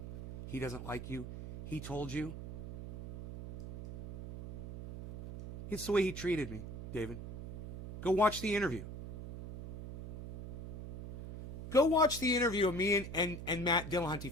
he doesn't like you? He told you? It's the way he treated me, David. Go watch the interview. Go watch the interview of me and Matt Dillahunty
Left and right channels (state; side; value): noise; right; hum, 8 dB below the sound